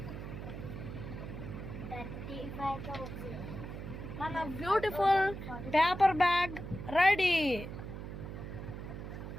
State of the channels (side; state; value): right; noise; hum, 8 dB below the sound